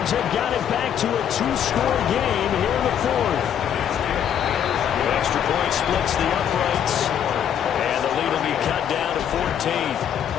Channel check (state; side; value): quieter; right; 9.2 dB